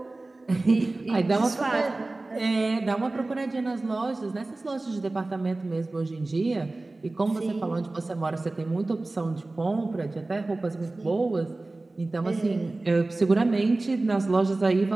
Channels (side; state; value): left; quieter; 3.0 dB